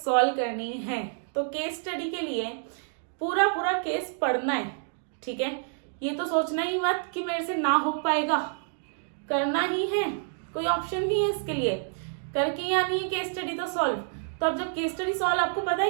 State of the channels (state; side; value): silent; left; digital silence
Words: करनी है, तो केस स्टडी के लिए पूरा केस पढ़ना है, ठीक है। ये तो सोचना ही मत कि मेरे से ना हो पाएगा, करना ही है, कोई ऑप्शन नहीं है इसके लिए, करके ही आनी है केस स्टडी तो सॉल्व। तो अब जब केस स्टडी सॉल्व आपको पता है